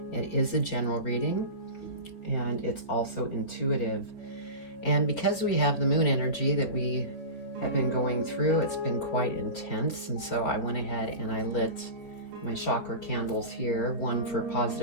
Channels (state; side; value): late; right; 4.4 ms